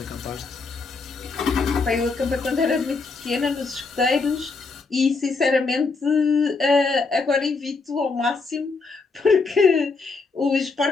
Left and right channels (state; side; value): quieter; right; 4.2 dB